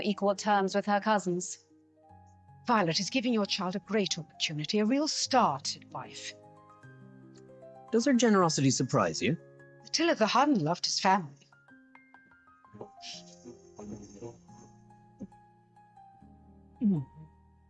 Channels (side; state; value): both; identical; correlation 1.00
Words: equal terms with her cousins. Violet is giving your child a great opportunity, a real start in life. Does her generosity surprise you? Attila the Hun loved his family.